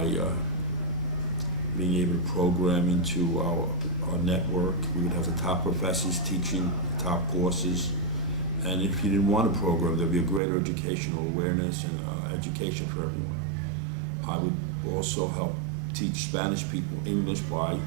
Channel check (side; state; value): left; drops out; at 10.4 s